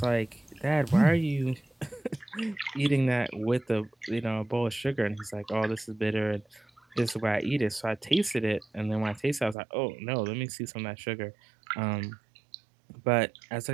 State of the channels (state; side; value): drops out; left; at 9.6 s